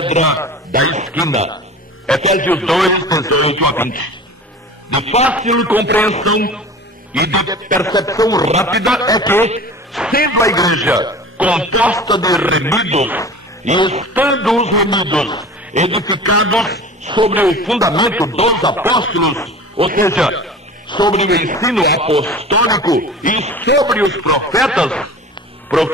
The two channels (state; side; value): normal; both; correlation 0.38